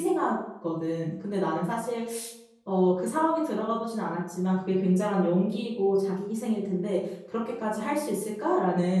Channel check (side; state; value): both; identical; correlation 1.00